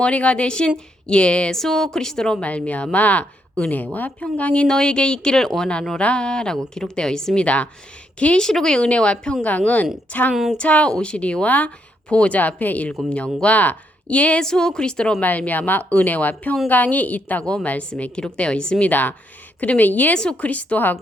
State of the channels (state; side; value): normal; both; correlation 0.76